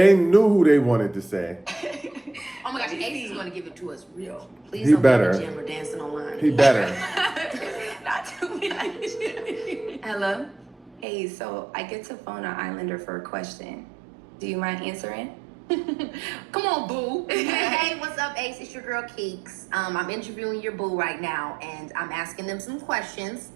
knew who they wanted to say. Oh my gosh, Ace is going to give it to us real. Please He don't better. be in the gym or dancing online. He better. Not too much. Hello? Hey, so I get to phone an Islander for a question. Do you mind answering? Come on, boo. Hey, what's up, Ace? It's your girl, Keeks. I'm interviewing your boo right now, and I'm asking them some questions.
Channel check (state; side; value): drops out; left; at 11.1 s